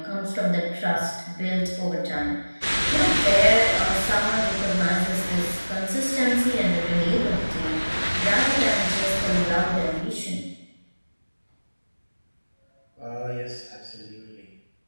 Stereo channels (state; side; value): inverted; both; correlation -1.00